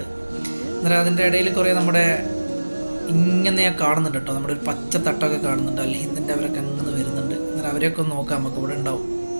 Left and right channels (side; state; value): both; inverted; correlation -1.00